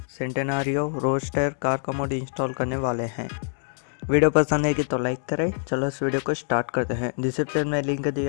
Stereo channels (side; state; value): right; silent; digital silence